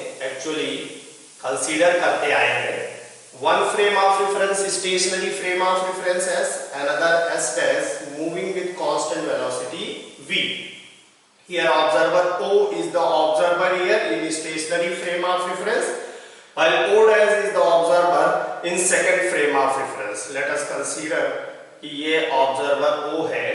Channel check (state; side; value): identical; both; correlation 1.00